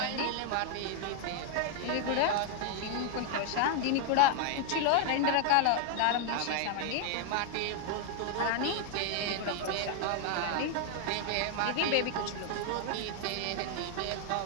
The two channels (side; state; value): both; different; correlation 0.00